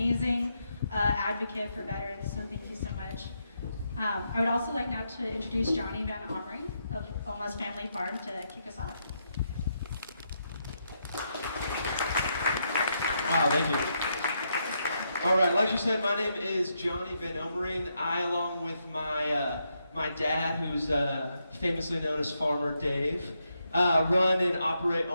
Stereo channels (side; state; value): both; inverted; correlation -0.80